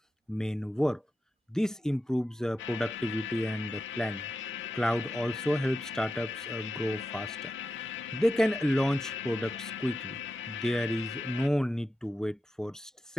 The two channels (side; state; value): both; normal; correlation 0.89